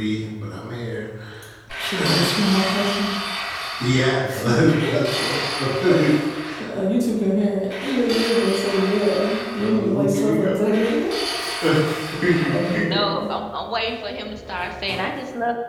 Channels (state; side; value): identical; both; correlation 1.00